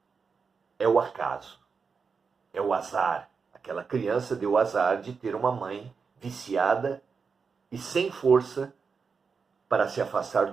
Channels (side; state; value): left; quieter; 5.4 dB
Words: é o acaso, é o azar. Aquela criança deu o azar de ter uma mãe viciada e sem força para se afastar